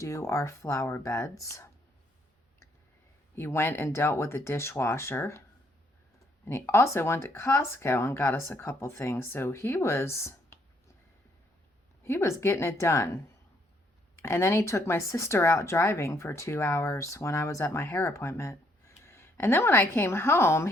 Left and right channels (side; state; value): both; normal; correlation 0.69